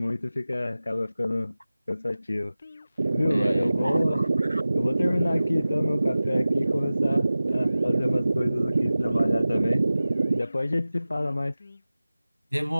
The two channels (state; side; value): inverted; both; correlation -0.96